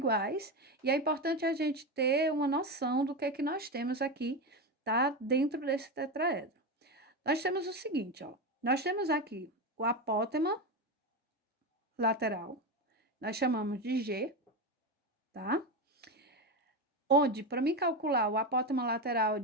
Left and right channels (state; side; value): normal; both; correlation 0.16